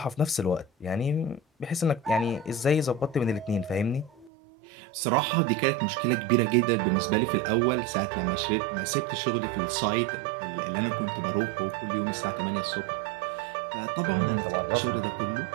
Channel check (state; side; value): drops out; left; at 4.3 s